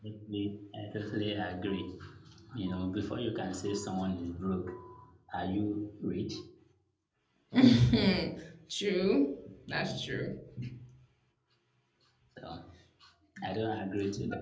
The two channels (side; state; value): both; identical; correlation 1.00